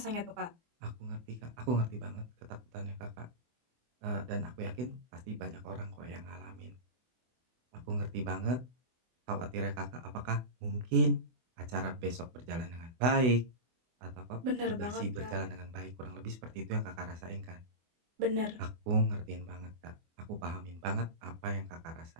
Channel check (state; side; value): late; left; 24 ms